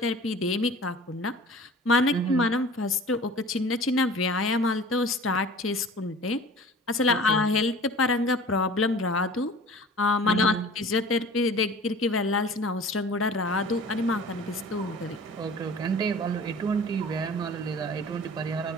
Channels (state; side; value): normal; both; correlation 0.43